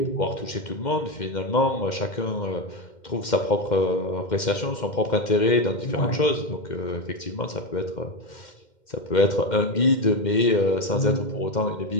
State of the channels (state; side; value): late; right; 2.1 ms